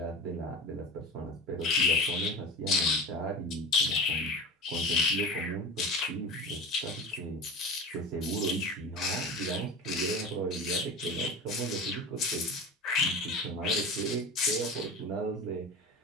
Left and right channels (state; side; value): normal; both; correlation 0.30